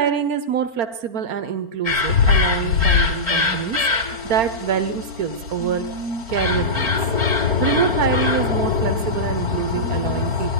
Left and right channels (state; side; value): late; left; 4.4 ms